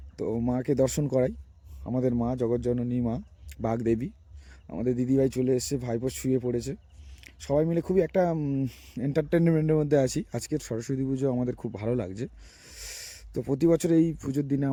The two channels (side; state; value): both; identical; correlation 1.00